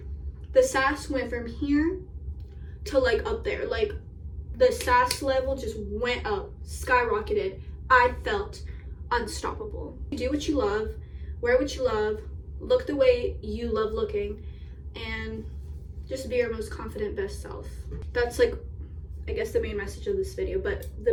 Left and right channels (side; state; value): both; identical; correlation 1.00